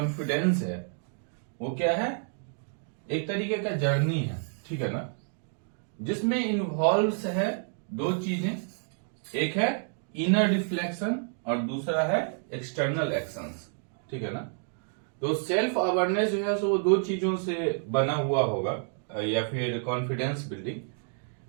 है वो क्या है, एक तरीके का जर्नी है। ठीक है ना, जिसमें इन्वॉल्व है दो चीजें, एक है इनर रिफ्लेक्शन और दूसरा है एक्सटर्नल एक्शंस। ठीक है ना। तो सेल्फ अवेयरनेस जो है सो वो दो चीजों से बना हुआ होगा, या फिर कॉन्फिडेंस बिल्डिंग।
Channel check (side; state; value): left; silent; 58 dB below the other